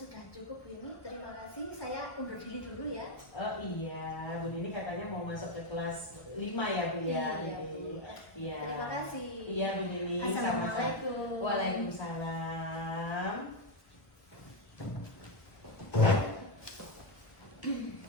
cukup, Bu Yumi. Terima kasih. Saya undur diri dulu ya. Oh iya, Bu Nining katanya mau masuk ke kelas 5 ya Bu ya. Iya, Bu. Iya. Terima kasih. Iya Bu Nining. Assalamualaikum. Waalaikumsalam.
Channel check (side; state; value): right; late; 1.1 ms